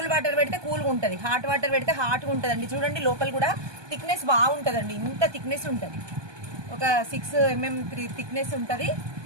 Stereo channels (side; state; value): left; late; 1.2 ms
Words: వాటర్ పెడితే కూల్గా ఉంటుంది, హాట్ వాటర్ పెడితే హాట్గా ఉంటుందండి. చూడండి, లోపల కూడా థిక్నెస్ బాగుంటుందండి. ఇంత థిక్నెస్ ఉంటుంది, ఒక 6 mm థిక్నెస్ ఉంటుంది.